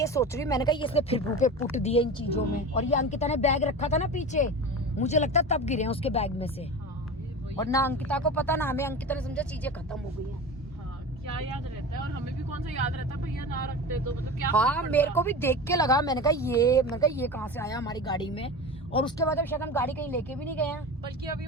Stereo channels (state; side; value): normal; both; correlation 0.29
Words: सोच रही हूँ, मैंने कहा ये इसने फिर मुंह पे पुट दिए इन चीजों में, और ये अंकिता ने बैग रखा था ना पीछे, मुझे लगता है तब गिरे हैं उसके बैग में से। और ना अंकिता को पता, ना हमें, अंकिता ने समझा चीजें खत्म हो गई हैं। हाँ, क्या याद रहता है, और हमें भी कौन सा याद रहता है, भैया ना रखते तो मतलब क्या। हाँ, मेरे को भी देख के लगा, मैंने कहा ये कहाँ से आया हमारी गाड़ी में। और उसके बाद अब शायद हम गाड़ी कहीं लेके भी नहीं गए हैं, बल्कि अब ये